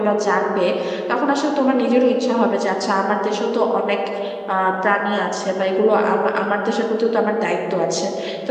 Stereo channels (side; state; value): both; identical; correlation 1.00